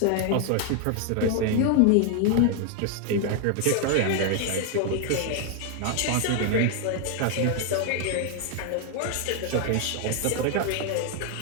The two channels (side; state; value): both; different; correlation 0.00